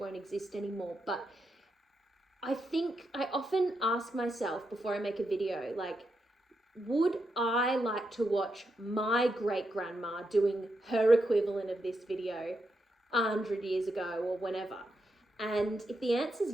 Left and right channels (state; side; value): normal; both; correlation 0.84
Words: exist anymore. But I think I often ask myself before I make a video, like, would I like to watch my great-grandma doing her equivalent of this video 100 years ago or whenever? And if the answer is